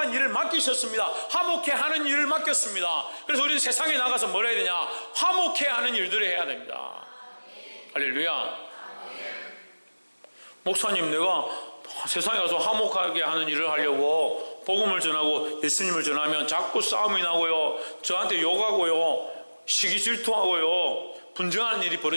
일을 맡기셨습니다. 화목해 하는 일을 맡겼습니다. 그래서 우리는 세상에 나가서 뭘 해야 되냐? 화목해 하는 일들을 해야 됩니다. 할렐루야. 목사님, 내가 세상에 가서 화목하게 하는 일을 하려고 복음을 전하고 예수님을 전하면 자꾸 싸움이 나고요, 저한테 욕하고요, 시기 질투하고요, 분쟁하는 일이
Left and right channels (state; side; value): inverted; both; correlation -1.00